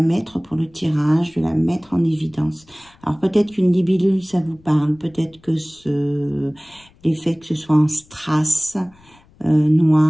mettre pour le tirage, de la mettre en évidence. Alors, peut-être qu'une libellule, ça vous parle. Peut-être que l'effet que ce soit en strass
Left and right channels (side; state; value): left; noise; rumble, 29 dB below the sound